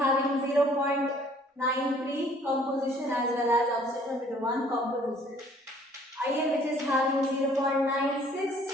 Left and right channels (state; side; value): normal; both; correlation 0.58